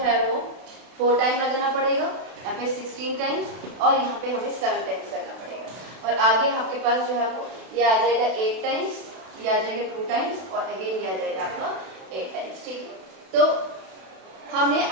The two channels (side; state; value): left; late; 32 ms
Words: है वो 4 टाइम लगाना पड़ेगा, यहाँ पे 16 टाइम्स और यहाँ पे हमें 7 टाइम्स करना पड़ेगा. और आगे आपके पास जो है वो ये आ जाएगा 8 टाइम्स, ये आ जाएगा 2 टाइम्स और अगेन ये आ जाएगा आपका 8 टाइम्स. ठीक है. तो हमने